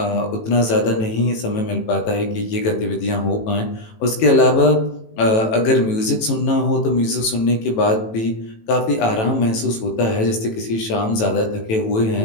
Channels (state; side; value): late; right; 18 ms